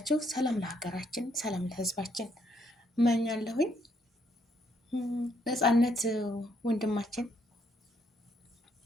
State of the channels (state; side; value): normal; both; correlation 0.72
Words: ሰላም ለሀገራችን፣ ሰላም ለህዝባችን እመኛለሁኝ። ነፃነት ወንድማችን